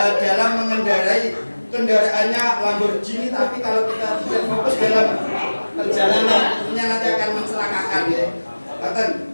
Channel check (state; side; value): inverted; both; correlation -1.00